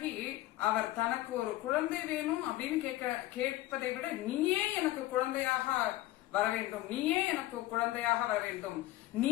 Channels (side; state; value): right; quieter; 16.4 dB